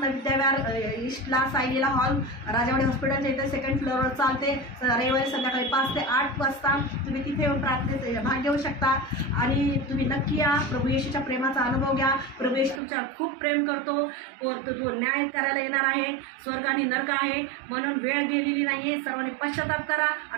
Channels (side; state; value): left; drops out; at 12.8 s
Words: विद्याविहार ईस्टला सायलीला हॉल राजावाडी हॉस्पिटलच्या इथे 2nd फ्लोअरवर चालते. रविवारी संध्याकाळी 5 ते 8 वाजता तुम्ही तिथे येऊन प्रार्थनेत भाग घेऊ शकता. आणि तुम्ही नक्की या. प्रभू येशूच्या प्रेमाचा अनुभव घ्या. प्रभू येशू तुमच्यावर खूप प्रेम करतो. तो न्याय करायला येणार आहे. स्वर्ग आणि नरक आहे म्हणून वेळ गेलेली नाहीये. सर्वांनी पश्चाताप करा